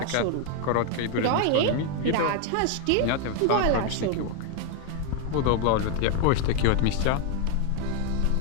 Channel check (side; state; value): both; different; correlation 0.01